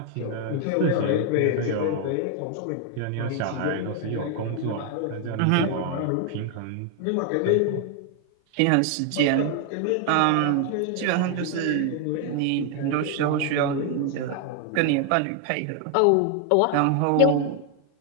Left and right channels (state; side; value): different; both; correlation 0.00